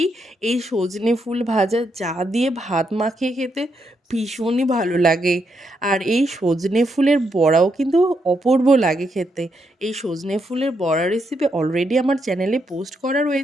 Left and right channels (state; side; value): normal; both; correlation 0.79